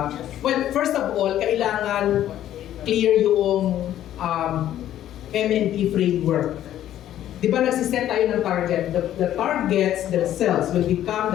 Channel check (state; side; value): quieter; right; 12.0 dB